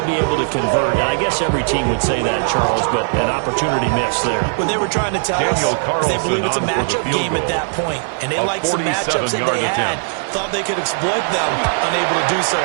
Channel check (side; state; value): left; silent; 59 dB below the other